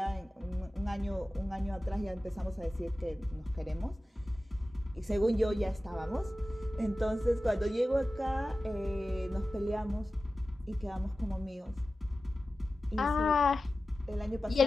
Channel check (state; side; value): normal; both; correlation 0.95